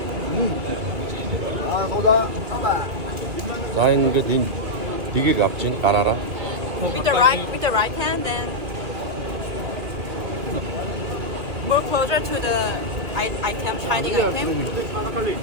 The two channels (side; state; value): left; late; 2.4 ms